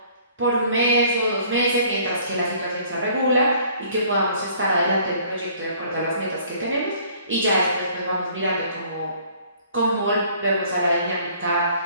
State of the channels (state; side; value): inverted; both; correlation -0.56